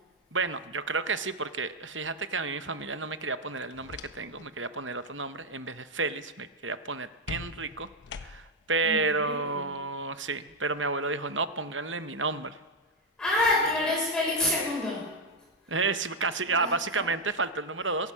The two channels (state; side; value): normal; both; correlation 0.04